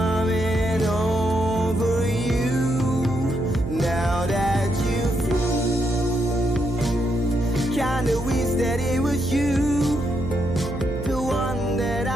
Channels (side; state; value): right; noise; hum, 7 dB below the sound